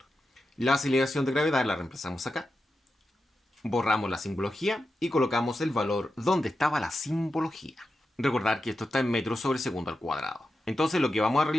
La aceleración de gravedad la reemplazamos acá. Borramos la simbología y colocamos el valor donde estaba la simbología. Recordar que esto está en metros sobre segundo al cuadrado. Entonces lo que vamos a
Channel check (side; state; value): both; normal; correlation 0.90